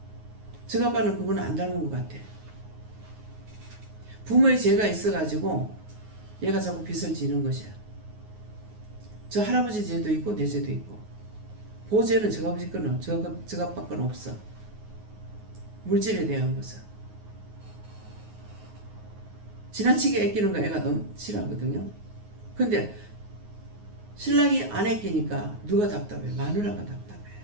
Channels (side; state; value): left; late; 9.5 ms